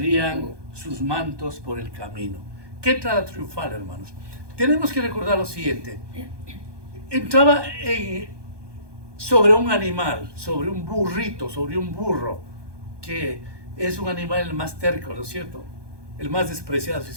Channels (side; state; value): left; late; 1.2 ms